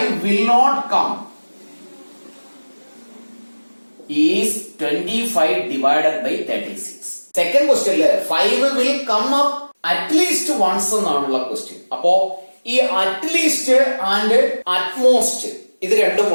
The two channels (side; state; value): both; inverted; correlation -1.00